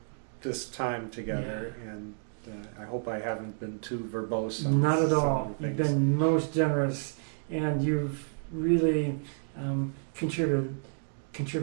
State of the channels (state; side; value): silent; left; digital silence